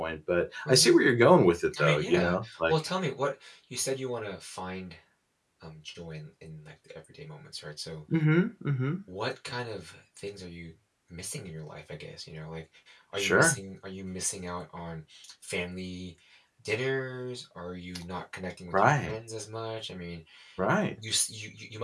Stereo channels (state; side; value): identical; both; correlation 1.00